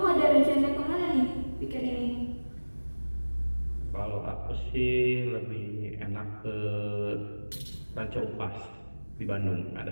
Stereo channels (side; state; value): both; inverted; correlation -1.00